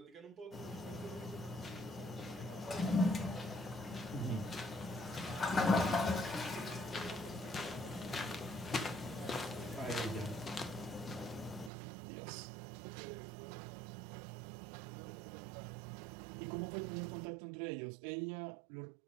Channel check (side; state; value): left; drops out; at 11.7 s